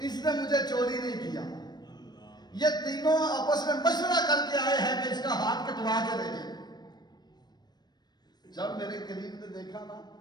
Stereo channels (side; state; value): right; late; 0.20 ms